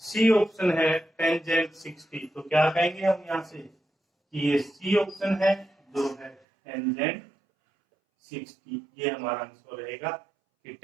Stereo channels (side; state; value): left; drops out; at 6.4 s